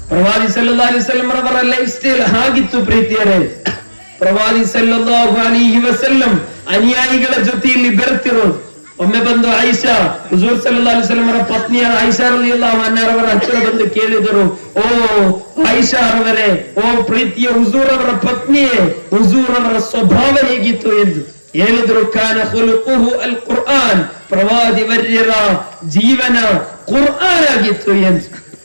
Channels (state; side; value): inverted; both; correlation -1.00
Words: ಪ್ರವಾದಿ ಸಲ್ಲಲ್ಲಾಹು ಅಲೈಹಿ ವಸಲ್ಲಂ ಅವರ ಲೈಫ್ ಸ್ಟೈಲ್ ಹಾಗಿತ್ತು ಪ್ರೀತಿಯರೇ. ಪ್ರವಾದಿ ಸಲ್ಲಲ್ಲಾಹು ಅಲೈಹಿ ವಸಲ್ಲಂ ಅನುಯಾಯಿಗಳ ಜೊತೆಯಲ್ಲಿ ಬೆರೆತಿರೋದು. ಒಮ್ಮೆ ಬಂದು ಆಯಿಷಾ, ಹುಜೂರ್ ಸಲ್ಲಲ್ಲಾಹು ಅಲೈಹಿ ವಸಲ್ಲಂ ಅವರ ಪತ್ನಿಯ ಆಯಿಷಾ ರಲಿಯಲ್ಲಾಹು ಅನ್ಹಾರವರ ಹತ್ತಿರ ಬಂದು ಕೇಳಿದರು, ಓ ಆಯಿಷಾ ಅವರೇ, ಓ ಪ್ರೀತಿಯ ಹುಜೂರ್ ಅವರ ಪತ್ನಿಯೇ, ಹುಜೂರ್ ಅವರ ಸ್ವಭಾವ ಹೇಗಿತ್ತು ಎಂದು ಹೇಳಿದ್ರು. ಕಾನ ಖುಲುಖುಹು ಅಲ್ ಕುರ್ಆನ್, ಪ್ರವಾದಿ ವರ್ಯರ ಜೀವನ ಕುರ್ಆನ್ ಆಗಿತ್ತು ಎಂದು